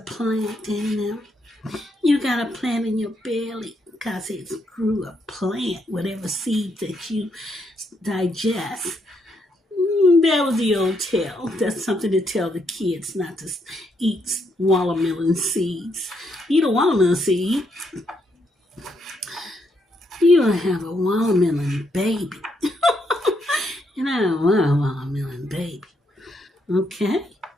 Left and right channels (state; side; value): normal; both; correlation 0.76